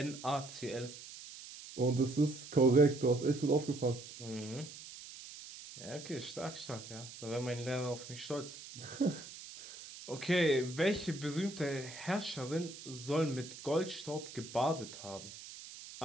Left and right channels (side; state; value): right; noise; hiss, 14 dB below the sound